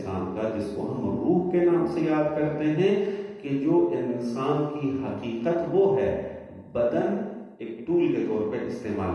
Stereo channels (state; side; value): identical; both; correlation 1.00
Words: کا جس کو ہم روح کے نام سے یاد کرتے ہیں، کہ جو انسان کی حقیقت وہ ہے. بدن ایک ٹول کے طور پر